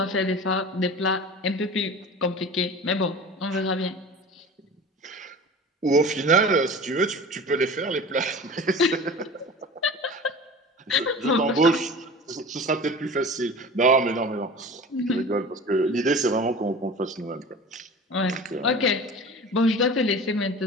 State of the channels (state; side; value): normal; both; correlation 0.37